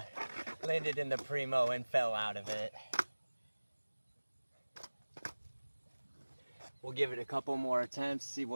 Landed in the primo and fell out of it. We'll give it a couple more attempts, see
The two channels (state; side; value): inverted; both; correlation -1.00